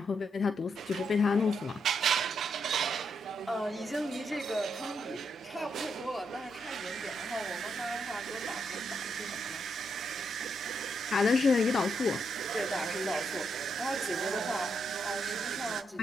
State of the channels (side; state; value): both; normal; correlation 0.79